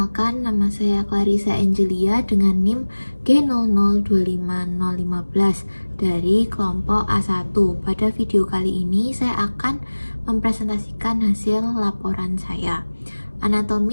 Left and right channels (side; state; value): both; inverted; correlation -1.00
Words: nama saya Clarissa Angelia dengan NIM G00250015 dari kelompok A1. Pada video kali ini saya akan mempresentasikan hasil laporan saya.